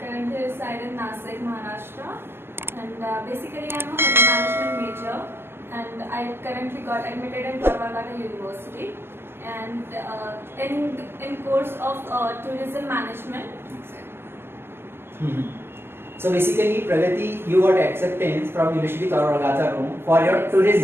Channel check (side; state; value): left; late; 0.12 ms